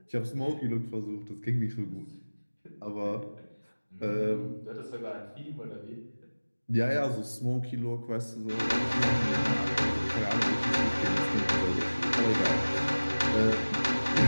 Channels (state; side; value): inverted; both; correlation -1.00